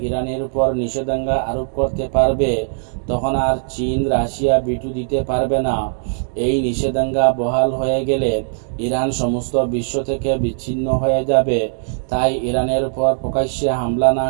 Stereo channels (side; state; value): left; silent; digital silence